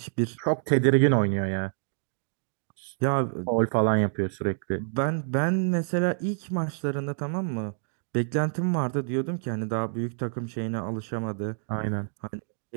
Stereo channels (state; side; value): silent; left; digital silence